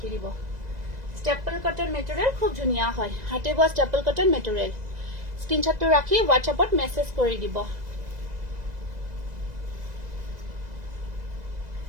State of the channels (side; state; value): left; late; 2.0 ms